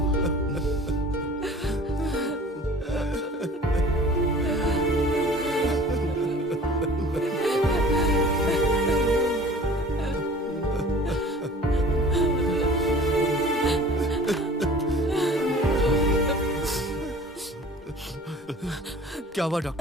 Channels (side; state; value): both; normal; correlation 0.46